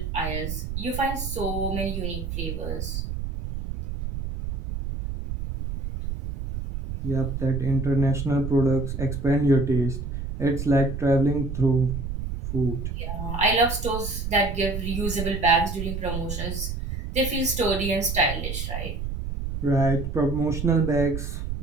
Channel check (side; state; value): right; noise; rumble, 5 dB below the sound